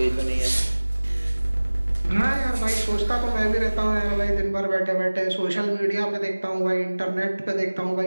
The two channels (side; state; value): both; inverted; correlation -1.00